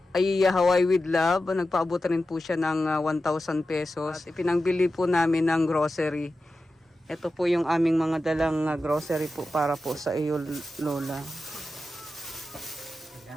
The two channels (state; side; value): normal; both; correlation 0.92